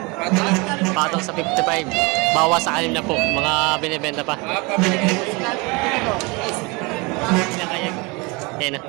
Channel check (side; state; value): left; quieter; 27.2 dB